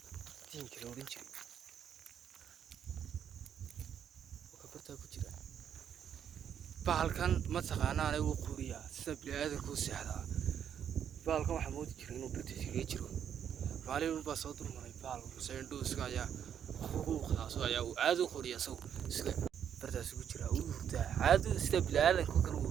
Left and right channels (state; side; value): quieter; left; 8.8 dB